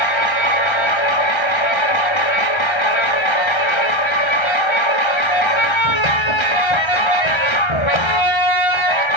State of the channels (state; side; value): late; right; 1.3 ms